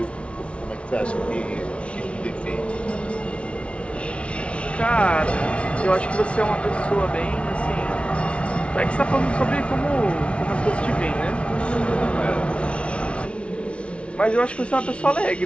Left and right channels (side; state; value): right; late; 0.060 ms